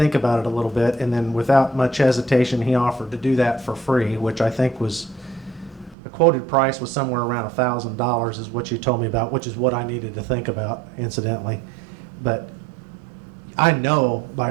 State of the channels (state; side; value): drops out; left; at 6.0 s